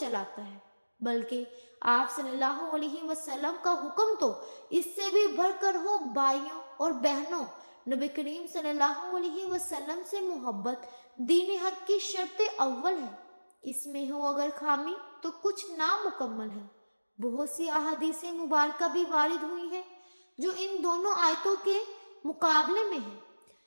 ہے، بلکہ آپ صلی اللہ علیہ وسلم کا حکم تو اس سے بھی بڑھ کر ہو۔ بھائیوں اور بہنوں، نبی کریم صلی اللہ علیہ وسلم سے محبت دین حق کی شرط اول ہے۔ اس میں ہو اگر خامی تو کچھ نامکمل ہے۔ بہت سی احادیث مبارکہ بھی وارد ہوئی ہیں جو ان دونوں آیتوں کے مقابلے میں ہیں۔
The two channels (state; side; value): inverted; both; correlation -1.00